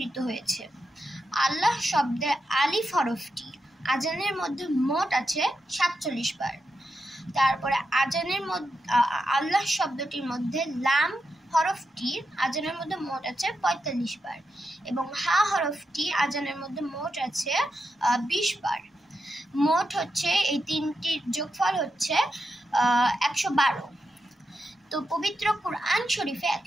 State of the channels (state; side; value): normal; both; correlation 0.87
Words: হয়েছে। আল্লাহ শব্দের আলিফ হরফটি আজানের মধ্যে মোট আছে 47 বার। তারপরে আজানের মধ্যে আল্লাহ শব্দটির মধ্যে লাম হরফটি আজানের মধ্যে মোট আছে 45 বার, এবং হা হরফটি আজানের মধ্যে মোট আছে 20 বার। মোট হচ্ছে এই তিনটির যোগফল হচ্ছে 112। তো পবিত্র কুরআন শরীফে